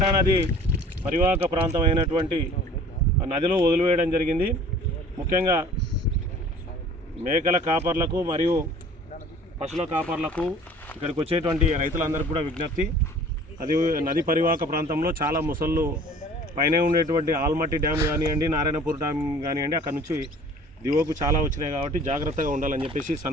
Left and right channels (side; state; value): both; normal; correlation 0.48